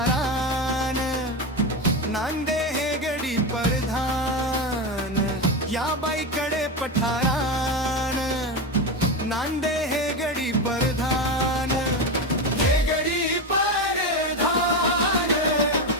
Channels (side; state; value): both; normal; correlation 0.16